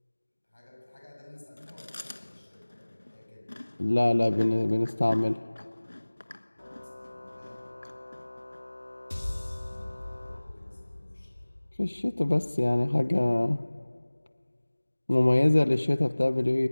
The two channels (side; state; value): both; inverted; correlation -1.00